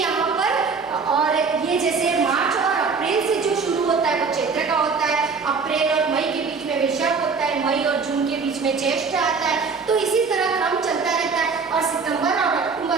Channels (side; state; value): left; quieter; 5.0 dB